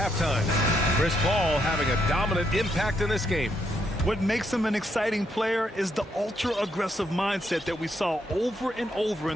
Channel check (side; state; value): both; normal; correlation 0.76